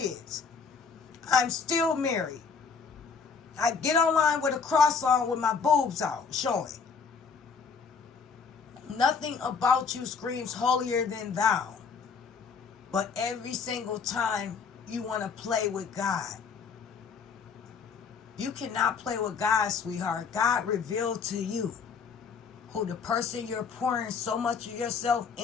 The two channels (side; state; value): right; quieter; 5.6 dB